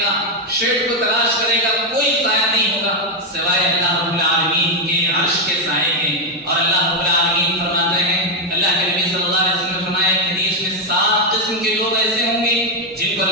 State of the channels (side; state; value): both; normal; correlation 0.04